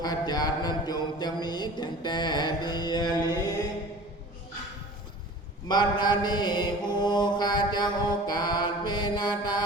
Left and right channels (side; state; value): both; normal; correlation 0.41